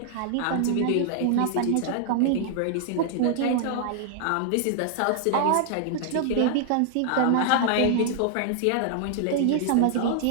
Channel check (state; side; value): different; both; correlation -0.01